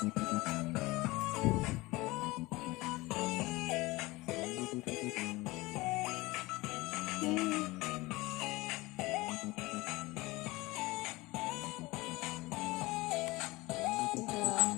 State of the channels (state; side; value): quieter; right; 21.3 dB